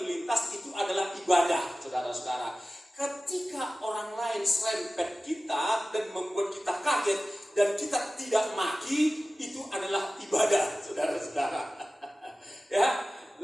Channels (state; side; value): normal; both; correlation 0.96